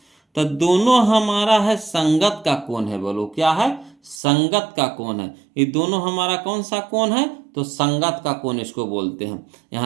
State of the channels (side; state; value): left; drops out; at 4.2 s